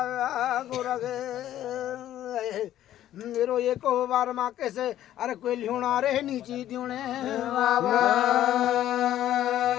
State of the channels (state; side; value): quieter; right; 12.5 dB